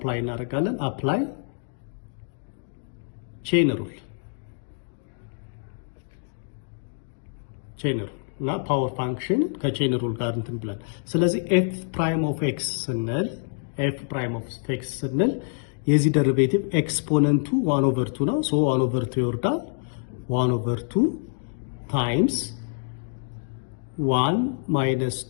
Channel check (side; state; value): right; silent; digital silence